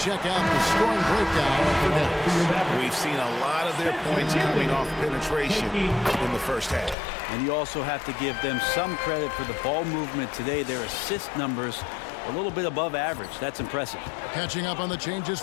out the scoring breakdown for Dallas. We've seen a lot of their points coming off penetration in the first half. And you also have to give them some credit for the ball movement today. Their assist numbers a little bit above average. That's impressive. Catching up on the changes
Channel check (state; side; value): drops out; right; at 7.0 s